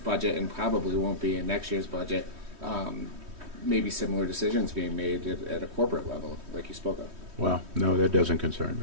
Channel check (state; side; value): late; left; 3.2 ms